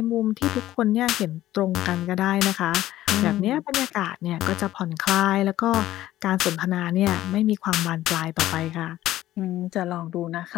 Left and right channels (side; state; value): right; quieter; 14.4 dB